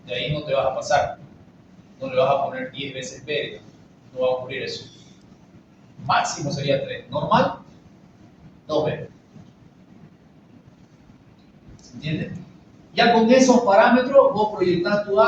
de ahí no te vas a pasar. No le vas a poner 10 veces B, no va a ocurrir eso. Máximo sería 3. Normal, 2B. ¿Se entiende? Ya con esos parámetros vos proyectás tu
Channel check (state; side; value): identical; both; correlation 1.00